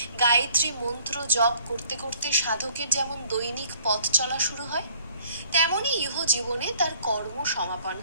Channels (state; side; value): inverted; both; correlation -0.58